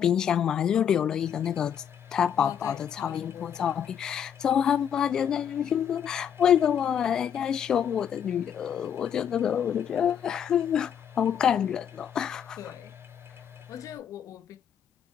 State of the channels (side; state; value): right; quieter; 8.6 dB